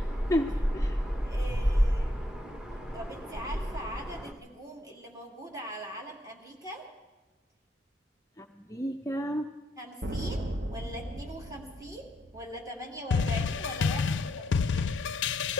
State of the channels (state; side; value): normal; both; correlation 0.77